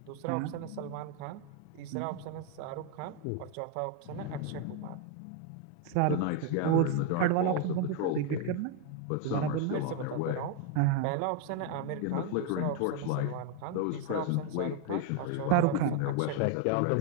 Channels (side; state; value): both; different; correlation 0.01